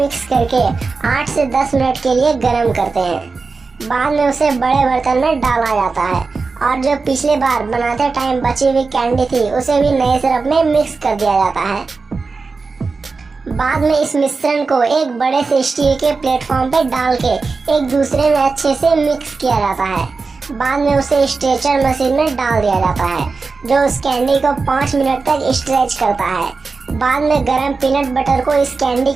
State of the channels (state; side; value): quieter; left; 4.3 dB